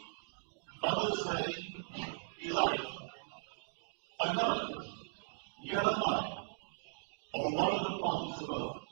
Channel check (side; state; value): left; silent; digital silence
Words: others say Elijah, and others Jeremiah, or one of the prophets of